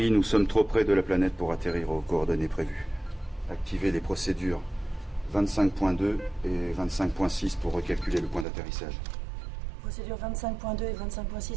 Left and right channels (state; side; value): drops out; left; at 8.5 s